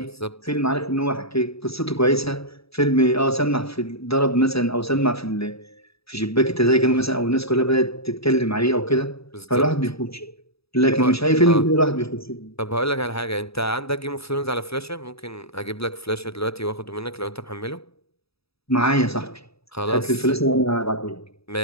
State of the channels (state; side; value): late; right; 0.77 ms